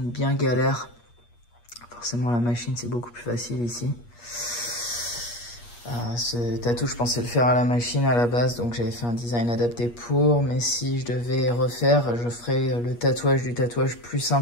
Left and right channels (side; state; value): right; late; 8.4 ms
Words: bien galère. Forcément la machine c'est beaucoup plus facile ici. Ce tatou, je pensais le faire à la machine à la base, donc j'avais fait un design adapté pour. Mais si je devais refaire, je ferais le tatouage du tatouage plus